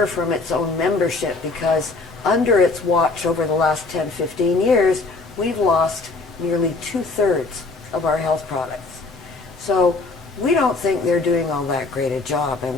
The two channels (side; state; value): right; quieter; 3.6 dB